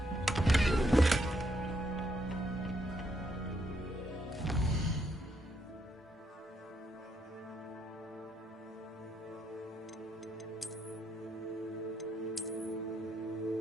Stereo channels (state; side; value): normal; both; correlation 0.76